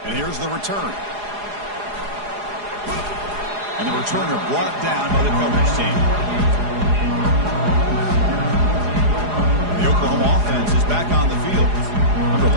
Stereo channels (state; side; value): late; left; 4.8 ms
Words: And here's the return. And the returner brought down by the coverage team. The Oklahoma offense is back on the field. Remember,